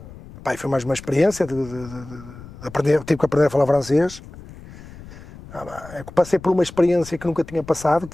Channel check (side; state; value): left; noise; rumble, 17 dB below the sound